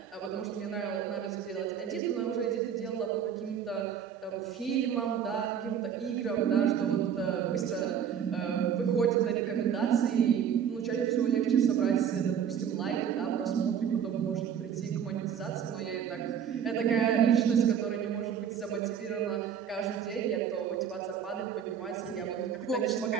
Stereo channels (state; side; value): quieter; left; 8.2 dB